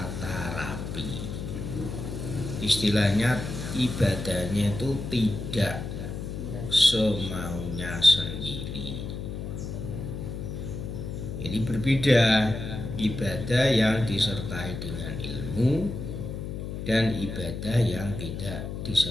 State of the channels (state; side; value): noise; left; hum, 6 dB below the sound